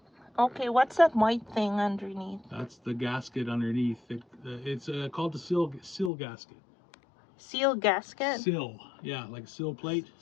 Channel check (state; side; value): drops out; right; at 6.1 s